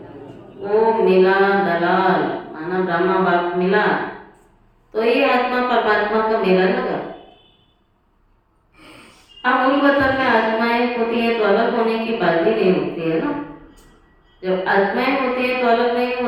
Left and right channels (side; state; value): both; identical; correlation 1.00